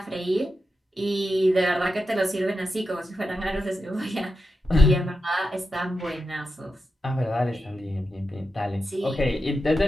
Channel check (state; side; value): normal; both; correlation 0.89